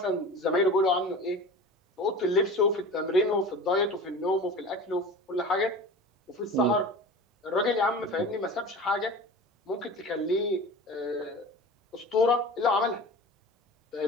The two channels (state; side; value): normal; both; correlation 0.36